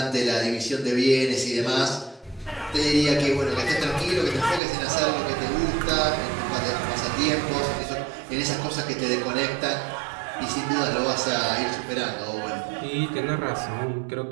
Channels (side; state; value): left; drops out; at 4.6 s